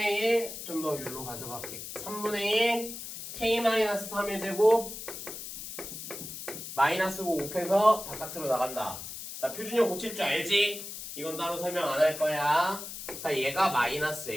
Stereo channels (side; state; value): left; noise; hiss, 9 dB below the sound